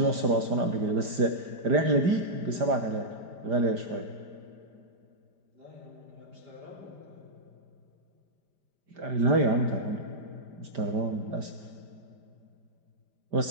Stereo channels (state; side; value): late; left; 5.0 ms